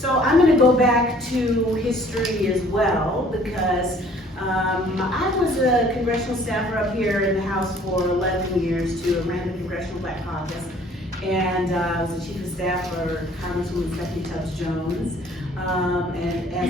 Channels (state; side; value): normal; both; correlation 0.56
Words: I'm gonna go back to history as well, because I was a congressional staffer up here in the House for 11 years too. I ran the Congressional Black Caucus, and I was the chief of staff for Congresswoman Stephanie Tubbs Jones. And